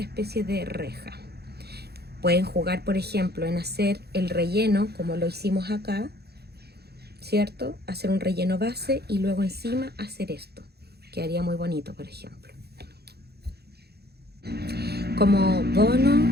especie de reja. Pueden jugar, por ejemplo, en hacer el relleno como lo hicimos acá, ¿cierto? Hacer un relleno base y luego encima hacer esto. Quedaría muy bonito, por ejemplo. Como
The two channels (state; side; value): late; left; 0.47 ms